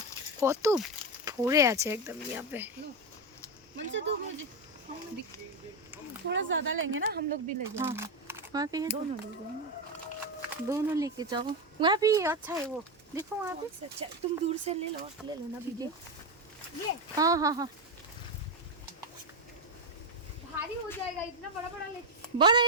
কত ভরে আছে एकदम यहाँ पे। थोड़ा ज्यादा लेंगे ना, हम लोग भी ले जाएंगे। वहाँ पे है, दोनों ले जाएंगे, दोनों लेके जाओ। वहाँ भी अच्छा है वो, देखो वहाँ पे। अच्छा तुम दूर से ले लो ना वीडियो। ये हाँ हाँ हाँ, भारी हो जाएगा, इतना बड़ा बड़ा ले। बड़ा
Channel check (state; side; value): normal; both; correlation 0.08